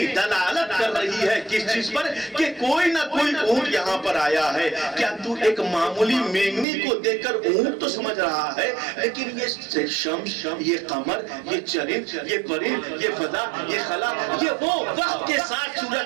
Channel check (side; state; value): left; drops out; at 6.7 s